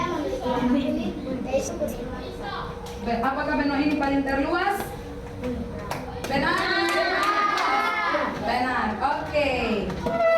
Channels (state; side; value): identical; both; correlation 1.00